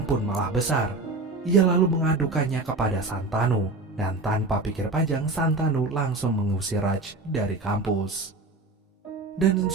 pun malah besar. Ia lalu mengadukannya kepada Santanu, dan tanpa pikir panjang Santanu langsung mengusir Raj dari kampus. Dan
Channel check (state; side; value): quieter; left; 3.2 dB